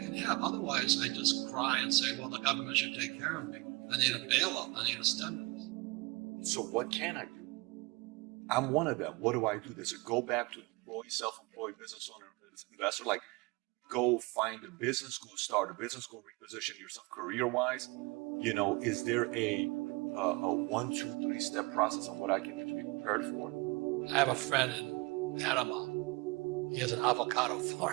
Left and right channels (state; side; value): quieter; left; 26.2 dB